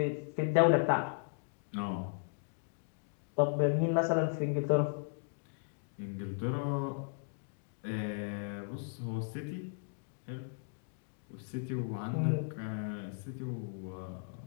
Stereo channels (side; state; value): right; silent; digital silence